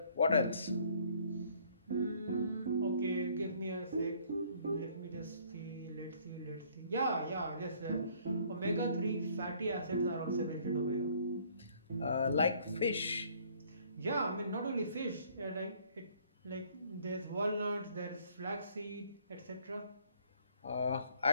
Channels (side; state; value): both; inverted; correlation -0.61